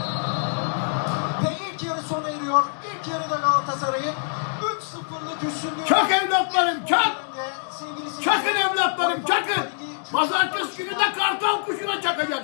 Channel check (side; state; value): right; silent; digital silence